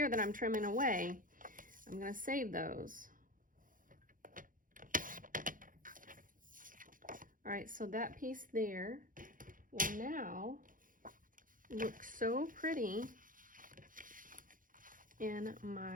that I'm trimming away, I'm going to save those. All right, so that piece there will now look so pretty in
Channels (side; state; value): left; late; 0.39 ms